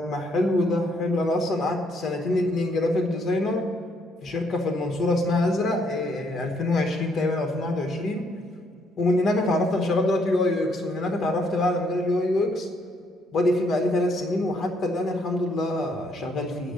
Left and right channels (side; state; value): both; normal; correlation 0.70